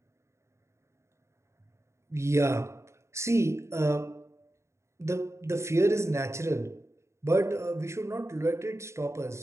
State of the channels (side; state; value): left; late; 0.14 ms